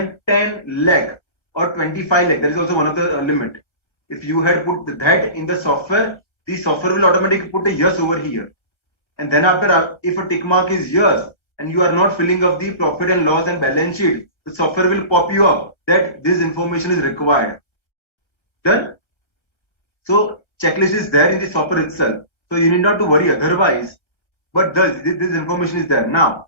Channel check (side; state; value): right; late; 1.3 ms